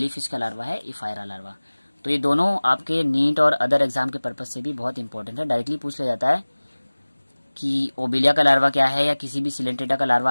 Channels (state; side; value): inverted; both; correlation -1.00